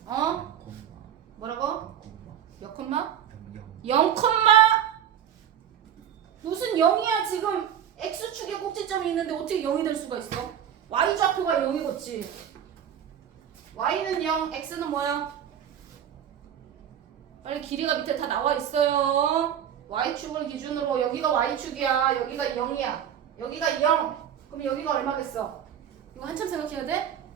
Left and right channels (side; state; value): left; quieter; 9.5 dB